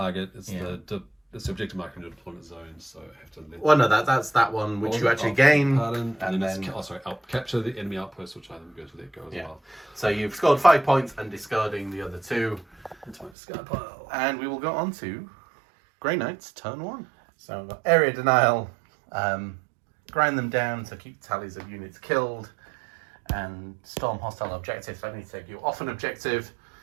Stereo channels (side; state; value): left; drops out; at 13.3 s